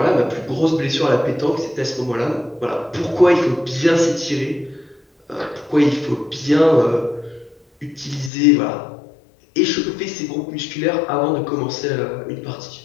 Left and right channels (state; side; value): drops out; right; at 8.3 s